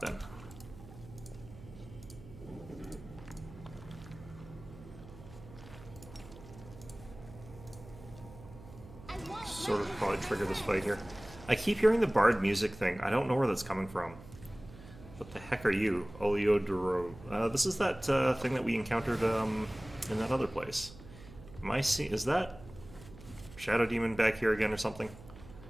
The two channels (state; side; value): noise; right; hum, 17 dB below the sound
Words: Sort of probably trigger this fight here. I keep hearing the bard music thing. I don't know where that's coming from. What the heck are you? Oleodoro. This is that thing that we encountered in that other place. Am I seeing... Is that Shadow Demon back here again or something?